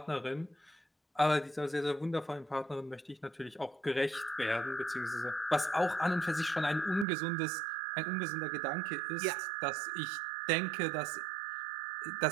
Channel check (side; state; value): left; drops out; at 7.1 s